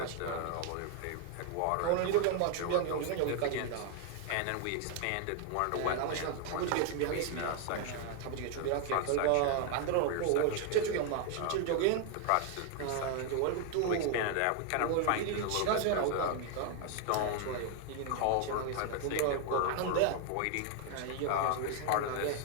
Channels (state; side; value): different; both; correlation 0.00